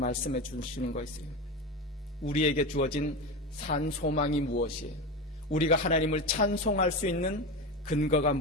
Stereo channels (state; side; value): normal; both; correlation 0.21